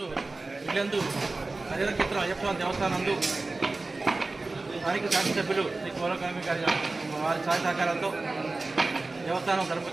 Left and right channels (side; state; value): left; quieter; 3.3 dB